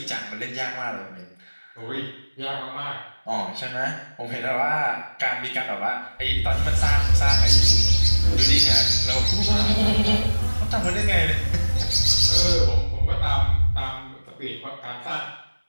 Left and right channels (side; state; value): both; inverted; correlation -1.00